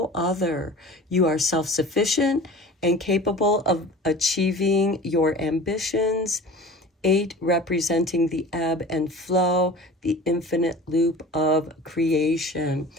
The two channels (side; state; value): both; normal; correlation 0.39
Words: other. You are self-sufficient and capable of achieving your ambitions. 8 representing the ebb and flow, the infinite loop of creation.